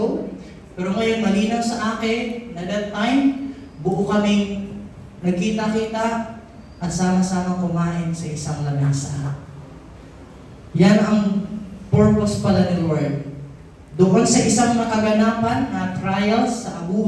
Pero ngayon, malinaw sa akin na that time, buo kaming nagkita-kita at sama-sama kumain sa isang lamesa. Yan ang purpose pala ni Lord. Doon sa isang nakaganapan na trials sa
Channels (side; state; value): both; identical; correlation 1.00